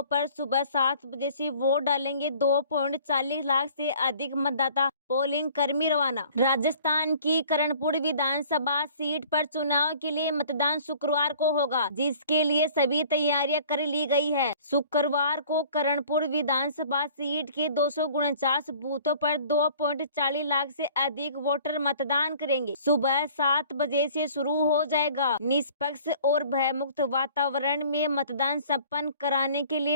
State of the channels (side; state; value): both; inverted; correlation -0.51